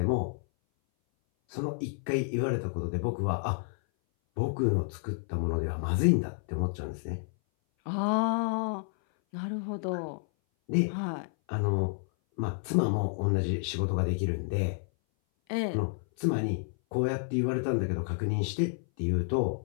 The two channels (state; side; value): silent; right; 57 dB below the other